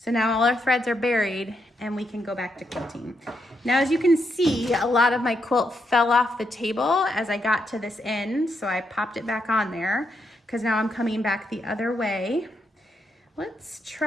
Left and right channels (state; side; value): normal; both; correlation 0.80